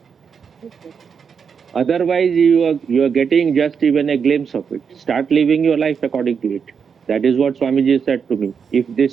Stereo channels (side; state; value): left; quieter; 6.4 dB